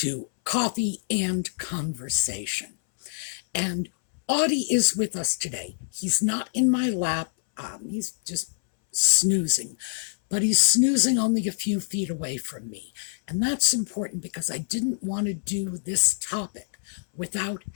Coffee and Conversation. And Audie is with us today. He's not in my lap. He's just snoozing. But he's snoozing only a few feet away from me. And that's important because I didn't want to do this topic without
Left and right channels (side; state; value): right; silent; 61 dB below the other